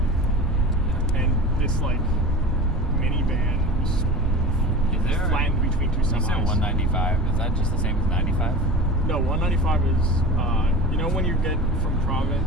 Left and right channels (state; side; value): normal; both; correlation 0.32